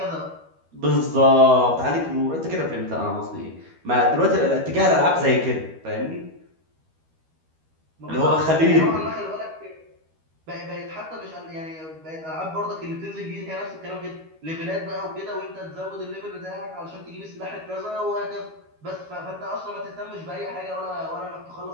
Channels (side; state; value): left; late; 12 ms